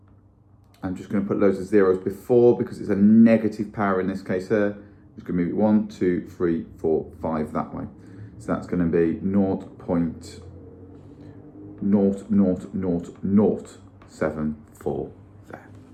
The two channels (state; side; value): identical; both; correlation 1.00